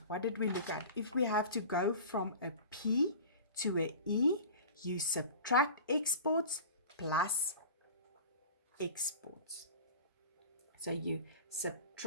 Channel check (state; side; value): inverted; both; correlation -0.38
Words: what did we look at? If we have to go from a P to a E, you subtract exports plus exports. So you